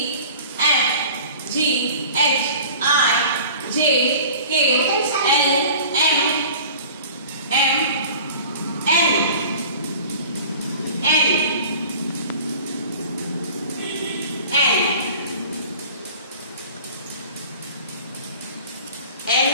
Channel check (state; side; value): inverted; both; correlation -0.43